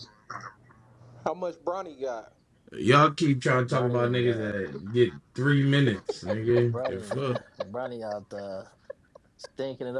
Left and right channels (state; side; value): identical; both; correlation 1.00